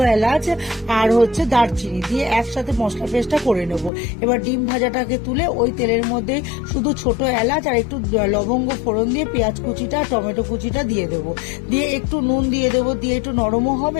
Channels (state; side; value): drops out; right; at 3.9 s